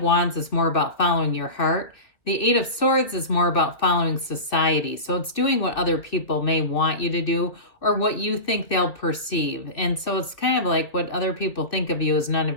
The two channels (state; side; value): late; right; 2.4 ms